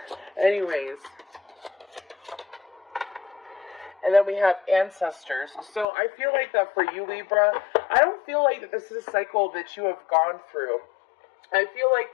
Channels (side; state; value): right; drops out; at 5.9 s